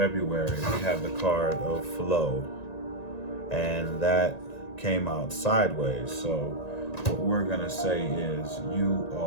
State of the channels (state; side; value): late; right; 1.9 ms